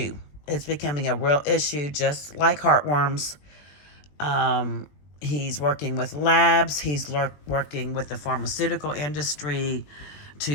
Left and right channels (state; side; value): late; right; 20 ms